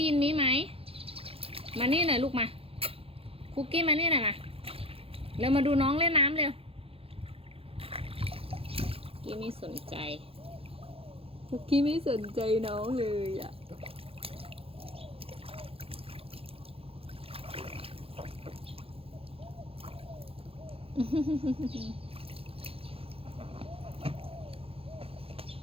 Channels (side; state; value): left; late; 0.27 ms